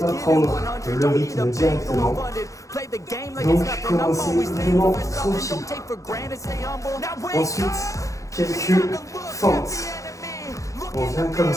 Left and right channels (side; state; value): right; late; 0.16 ms